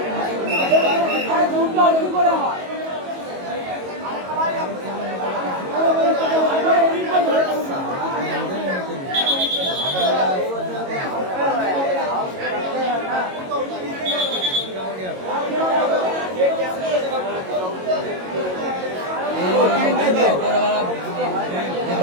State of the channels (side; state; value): left; late; 22 ms